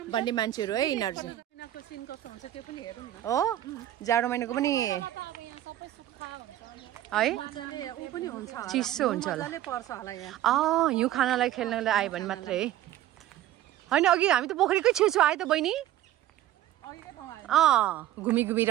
भन्ने मान्छेहरू है यिनीहरू चाहिँ। हो जाडो महिनाको पनि है चिसो हुन्छ होला। हिउँ खानालाई खेल्नलाई आयो भने मात्रै है। होइन अघि हामी त पोखरीकै छेउछेउ आयो त बहिनी। घुमी घुमी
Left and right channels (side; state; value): left; quieter; 13.3 dB